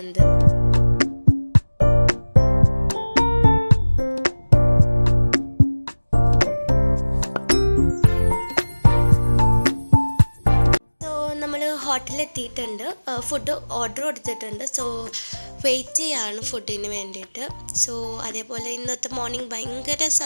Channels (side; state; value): both; inverted; correlation -1.00